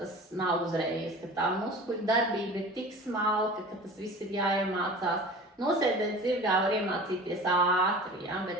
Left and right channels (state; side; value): normal; both; correlation 0.39